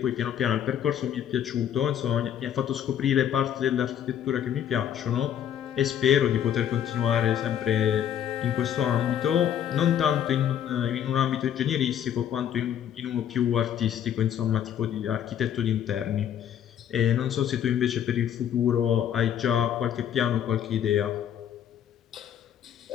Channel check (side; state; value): right; quieter; 9.8 dB